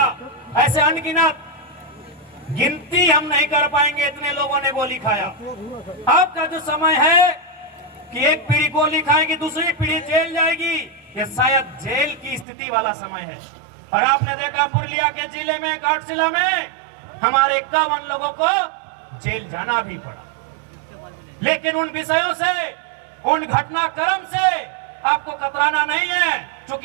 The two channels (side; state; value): left; drops out; at 12.5 s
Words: ऐसे अनगिनत, गिनती हम नहीं कर पाएंगे, इतने लोगों ने गोली खाया। अब का जो समय है कि एक पीढ़ी गोली खाएगी, दूसरी पीढ़ी जेल जाएगी, ये शायद जेल की स्थिति वाला समय है। और आपने देखा पुरुलिया के जिले में, घाटशिला में हमारे 51 लोगों को जेल जाना भी पड़ा। लेकिन उन विषयों से, उन घटनाक्रम से आपको कतराना नहीं है,